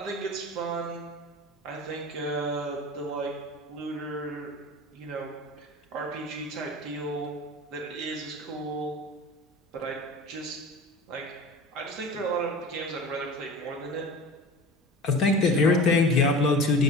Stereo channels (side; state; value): both; normal; correlation 0.36